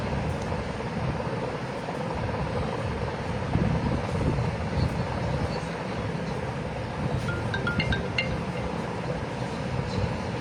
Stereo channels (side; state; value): both; identical; correlation 1.00